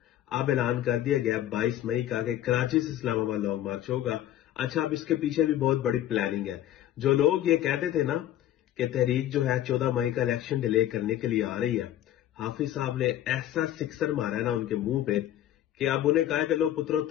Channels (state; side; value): quieter; right; 12.4 dB